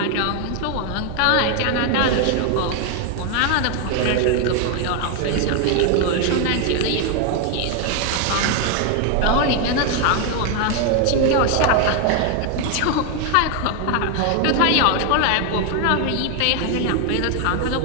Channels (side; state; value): both; different; correlation 0.01